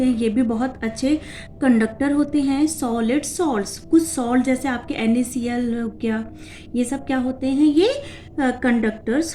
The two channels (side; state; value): both; identical; correlation 1.00